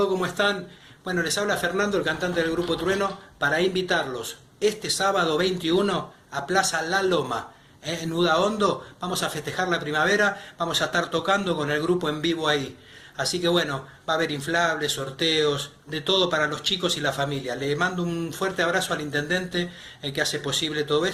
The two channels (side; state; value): both; identical; correlation 1.00